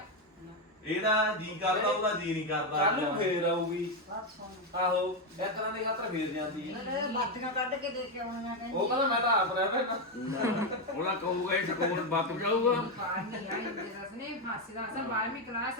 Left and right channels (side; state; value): both; normal; correlation 0.07